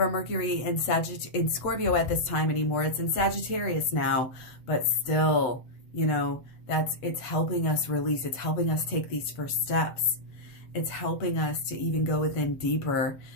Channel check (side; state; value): right; late; 8.0 ms